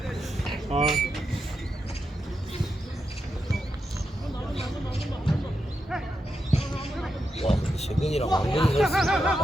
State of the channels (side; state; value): both; normal; correlation 0.86